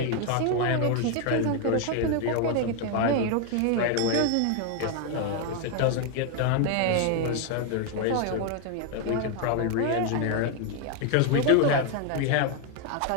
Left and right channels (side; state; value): both; different; correlation 0.01